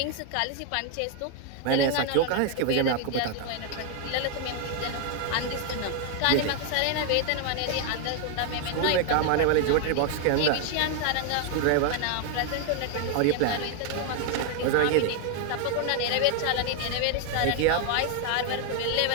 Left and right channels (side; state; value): both; different; correlation 0.00